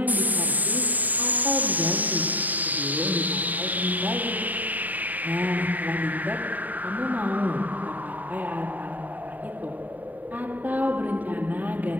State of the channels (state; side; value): late; left; 0.081 ms